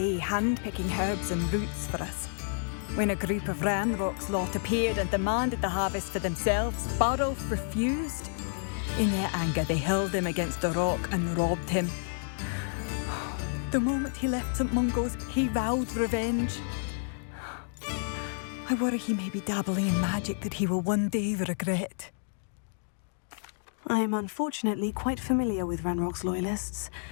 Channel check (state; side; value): silent; right; digital silence